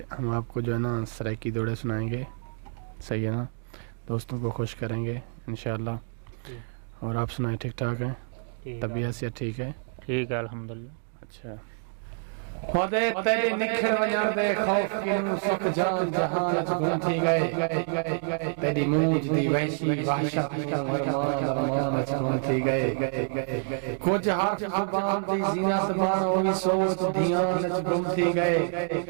ہم آپ کو جو ہے نا سرائکی دوڑے سنائیں گے، صحیح ہے نا؟ دوستوں کو خوش کریں گے انشاءاللہ۔ اور آپ سنائیں، ٹھیک ٹھاک ہیں؟ طبیعت سے ٹھیک ہے؟ ٹھیک ہے الحمدللہ۔ اچھا۔ خودے تیرے نکھر ونجر دے خوف کنو سکھ جان جہان اچ گم تھی گئے، تیری موج دی وحشی وحشت ارمان اچ گم تھی گئے، کچھ حرف زبان دی زینت بان ہوئی سوچ دھیان اچ گم تھی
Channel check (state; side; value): silent; left; 60 dB below the other